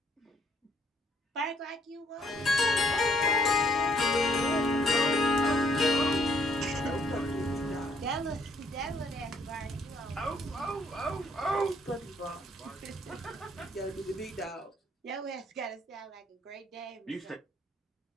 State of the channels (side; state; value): both; normal; correlation 0.66